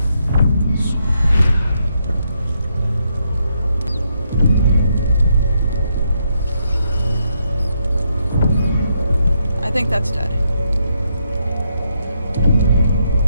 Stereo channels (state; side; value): inverted; both; correlation -0.78